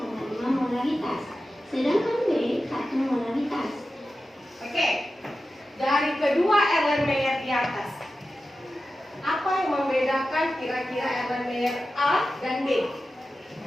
molaritas, sedangkan B 1 molaritas. Oke, dari kedua elemen di atas, apa yang membedakan kira-kira elemen A dan B?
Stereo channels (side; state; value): both; normal; correlation 0.93